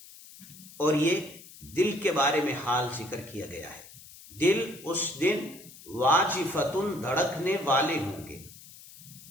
اور یہ دل کے بارے میں حال ذکر کیا گیا ہے. دل اس دن واجفتن دھڑکنے والے ہوں گے.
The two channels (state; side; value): noise; left; hiss, 19 dB below the sound